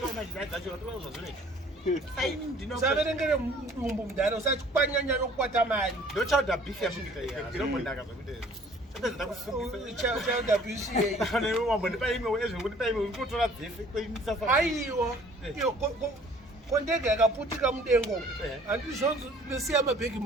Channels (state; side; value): normal; both; correlation 0.54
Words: usaverengere mudumbu mudhara usati kwanyanya nokukwata mari. ndochauda beef yamuita ndinombondaka zvakuti Chauda BCA. wambondipa imwe ezvondipa imwe urikutora dzese kweinisasa. Aiwa. Kondege yakaputika mudengo. Handizvonzo ndosiya mabhegi